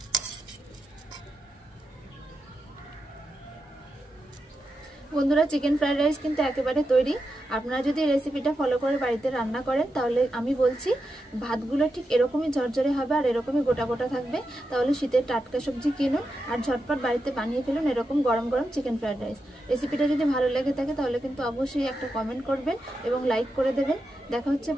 বন্ধুরা, চিকেন ফ্রাইড রাইস কিন্তু একেবারে তৈরি। আপনারা যদি রেসিপিটা ফলো করে বাড়িতে রান্না করেন তাহলে আমি বলছি ভাতগুলো ঠিক এরকমই ঝরঝরে হবে আর এরকমই গোটা গোটা থাকবে। তাহলে শীতের টাটকা সবজি কিনুন আর ঝটপট বাড়িতে বানিয়ে ফেলুন এরকম গরম গরম চিকেন ফ্রাইড রাইস। রেসিপিটা যদি ভালো লেগে থাকে তাহলে কিন্তু অবশ্যই একটা কমেন্ট করবেন এবং লাইক করে দেবেন। দেখা হচ্ছে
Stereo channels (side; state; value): both; normal; correlation 0.88